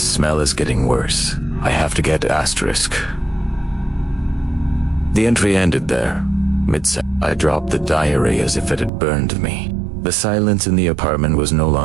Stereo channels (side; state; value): left; drops out; at 8.9 s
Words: is getting worse. I have to get Asterisk. The entry ended there. I dropped the diary as if it had burned me. The silence in the apartment was no